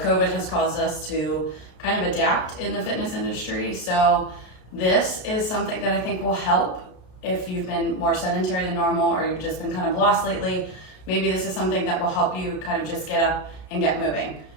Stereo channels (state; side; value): late; right; 33 ms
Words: COVID has caused us to kind of adapt in the fitness industry. So this is something that I think will help if you've been more sedentary than normal or you've just been kind of lost lately. Maybe this is something that will help you kind of just get up and get moving.